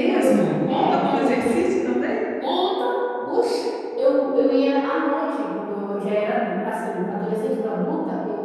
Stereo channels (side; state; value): both; identical; correlation 1.00